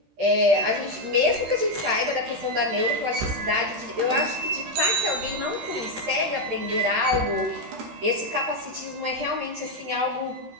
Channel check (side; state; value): left; late; 13 ms